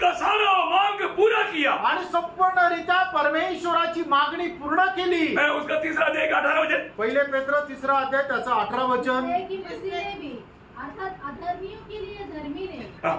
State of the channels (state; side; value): identical; both; correlation 1.00